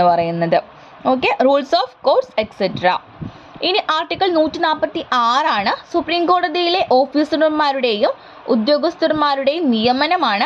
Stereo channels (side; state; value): both; identical; correlation 1.00